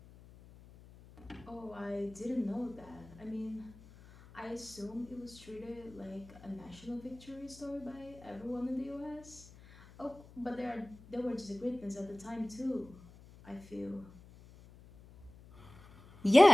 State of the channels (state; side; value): noise; left; hum, 20 dB below the sound